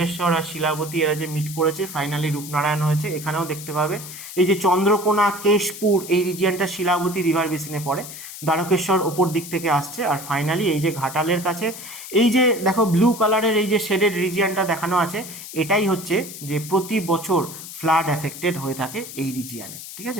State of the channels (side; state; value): left; noise; hiss, 12 dB below the sound